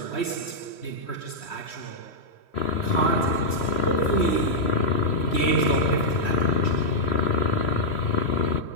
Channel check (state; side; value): late; right; 3.1 ms